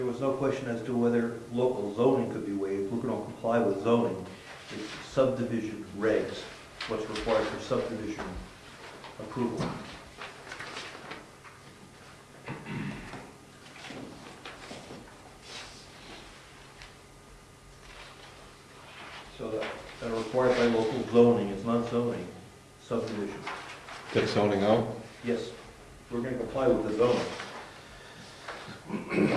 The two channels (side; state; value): both; identical; correlation 1.00